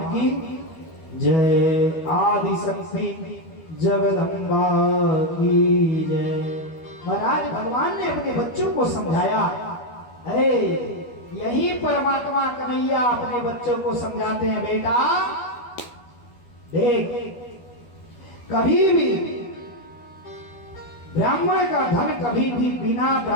की जय। आदि शक्ति जगदम्बा की जय। महाराज भगवान ने अपने बच्चों को समझाया, अरे यही परमात्मा कन्हैया अपने बच्चों को समझाते हैं, बेटा देख कभी भी ब्राह्मण का धन कभी भी बिना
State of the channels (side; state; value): right; late; 12 ms